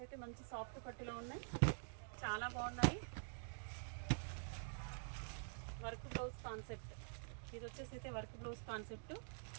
అయితే మంచి సాఫ్ట్ పట్టులో ఉన్నాయి, చాలా బాగున్నాయి. వర్క్ బ్లౌజ్ కాన్సెప్ట్ ఇది వచ్చేసి అయితే వర్క్ బ్లౌజ్ కాన్సెప్ట్.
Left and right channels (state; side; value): silent; left; digital silence